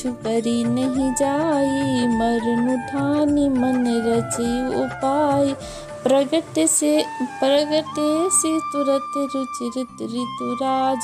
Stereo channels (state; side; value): identical; both; correlation 1.00